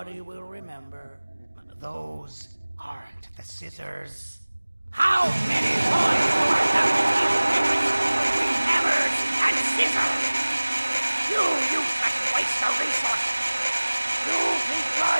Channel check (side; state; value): both; inverted; correlation -1.00